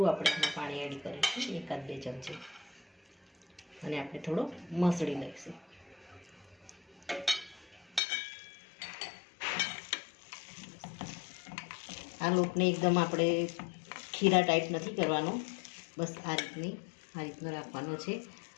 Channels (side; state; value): right; drops out; at 8.0 s